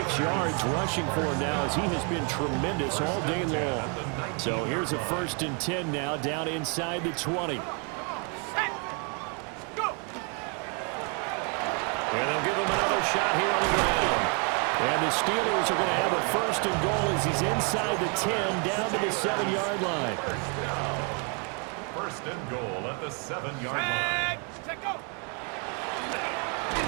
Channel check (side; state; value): left; quieter; 36.9 dB